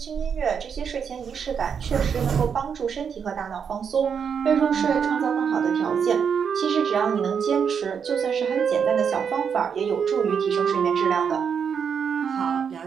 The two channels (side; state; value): left; quieter; 7.0 dB